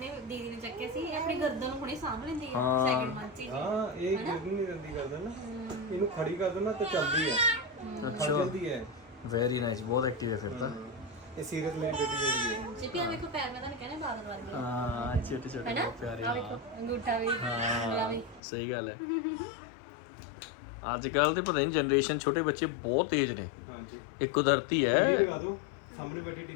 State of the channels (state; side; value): drops out; right; at 18.4 s